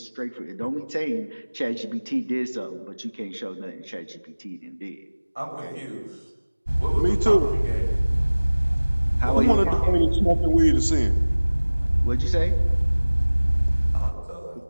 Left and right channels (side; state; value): both; inverted; correlation -1.00